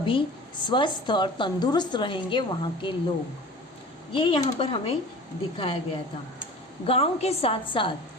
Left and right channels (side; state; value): both; normal; correlation 0.40